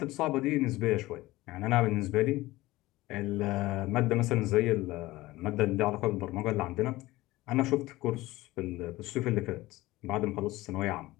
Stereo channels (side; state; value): right; quieter; 18.4 dB